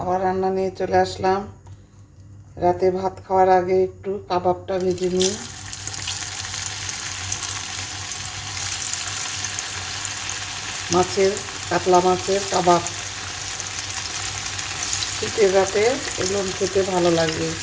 রান্না নিয়ে চলে আসলাম। রাতে ভাত খাওয়ার আগে একটু কাবাবটা ভেজে নিই। কাতলা মাছের কাবাব শীতের রাতে এগুলো খেতে ভালো লাগবে।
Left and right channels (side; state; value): both; identical; correlation 1.00